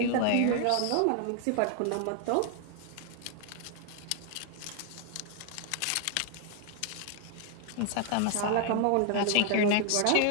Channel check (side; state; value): both; different; correlation 0.00